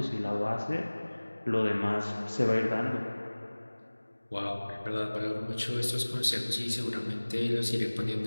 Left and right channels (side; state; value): both; inverted; correlation -1.00